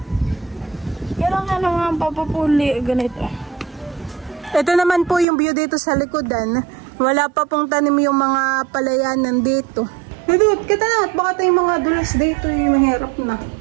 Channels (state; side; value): drops out; left; at 5.2 s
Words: Kailangan naman papapuli ganito. Ito naman po yung view dito sa likodan. Wala pa pong tanim yung mga palayanan dito. Dudut, kita na. At baka tayong mga dulas dito yung mahirap na.